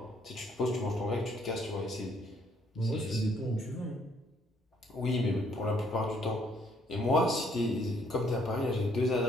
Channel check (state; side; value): normal; both; correlation 0.67